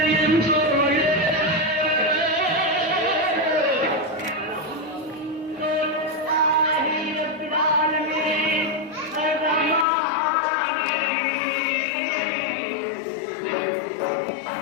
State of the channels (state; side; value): drops out; right; at 9.9 s